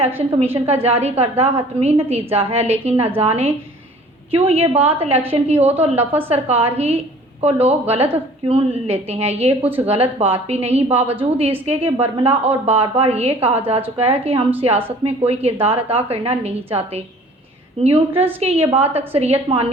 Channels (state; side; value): normal; both; correlation 0.50